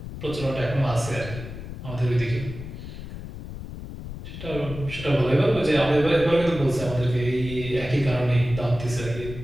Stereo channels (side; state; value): left; noise; rumble, 10 dB below the sound